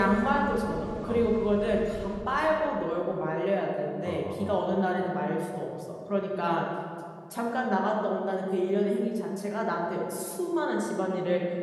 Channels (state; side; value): identical; both; correlation 1.00